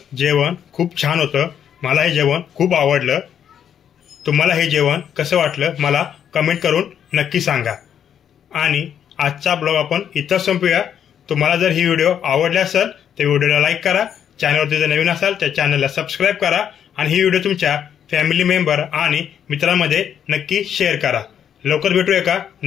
जेवण खूप छान होतं। मला हे जेवण खूप आवडलं। तुम्हाला हे जेवण कसं वाटलं मला कमेंट करून नक्की सांगा। आणि आजचा ब्लॉग आपण इथं संपूया। तुम्हाला जर ही व्हिडिओ आवडली असेल तर व्हिडिओला लाईक करा, चॅनलवरती जर नवीन असाल तर चॅनलला सबस्क्राईब करा आणि ही व्हिडिओ तुमच्या फॅमिली मेंबर आणि मित्रांमध्ये नक्की शेअर करा। लवकर भेटू एका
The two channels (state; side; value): quieter; right; 8.9 dB